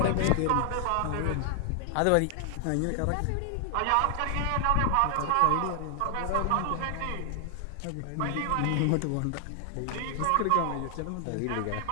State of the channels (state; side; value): different; both; correlation 0.00